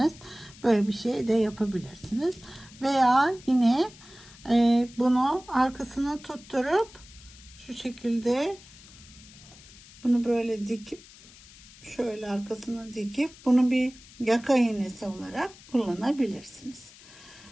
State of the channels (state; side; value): noise; left; hiss, 21 dB below the sound